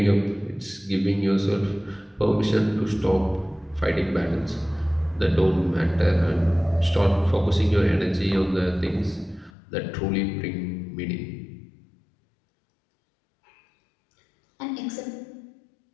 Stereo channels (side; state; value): right; drops out; at 9.5 s